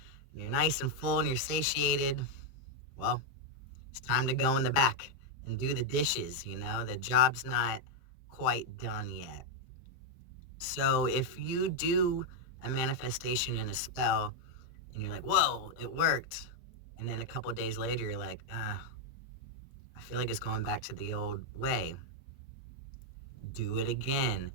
and you're nice and full and you're satiated, well, it's time to go in the back and do the dishes, the job's not quite done yet. So if you do a manifestation in a spell and you're like, whoa, it worked, and then a couple days later you're like, I feel like it's going back to the old way, do it again.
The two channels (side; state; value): right; late; 23 ms